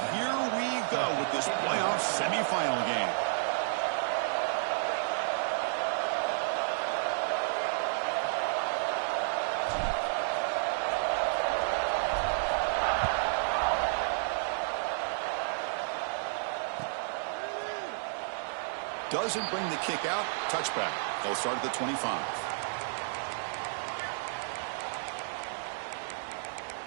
here we go with this playoff semifinal game. Doesn't bring the kick out. Touchback. They'll start at the 25.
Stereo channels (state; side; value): silent; left; digital silence